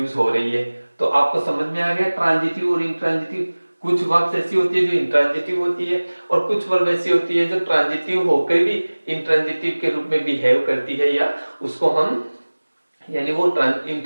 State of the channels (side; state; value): both; inverted; correlation -1.00